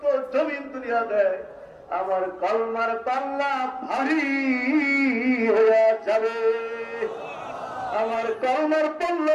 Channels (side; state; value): both; identical; correlation 1.00